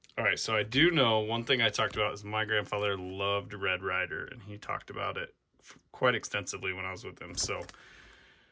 all right, so I do know one thing I talked about is my grandfather loved Red Ryder, and he talked about it quite extensively when I was with him. So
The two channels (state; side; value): identical; both; correlation 1.00